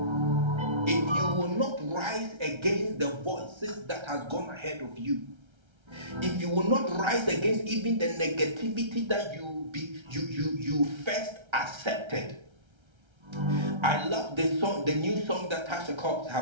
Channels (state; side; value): late; left; 1.3 ms